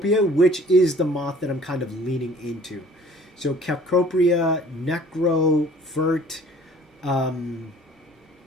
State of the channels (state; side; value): normal; both; correlation 0.52